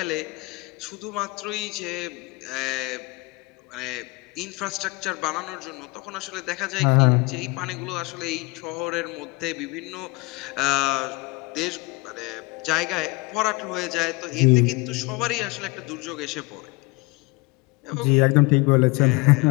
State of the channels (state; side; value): quieter; right; 25.5 dB